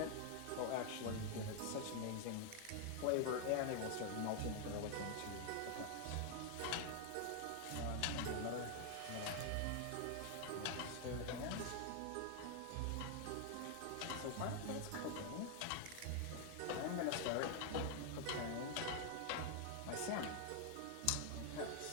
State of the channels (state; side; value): different; both; correlation 0.00